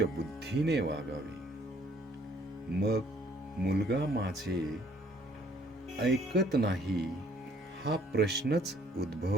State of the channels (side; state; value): both; normal; correlation 0.62